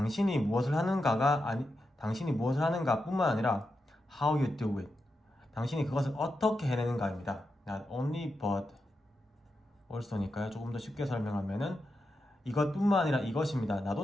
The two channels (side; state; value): both; normal; correlation 0.87